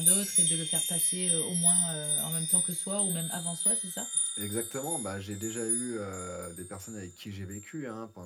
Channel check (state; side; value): identical; both; correlation 1.00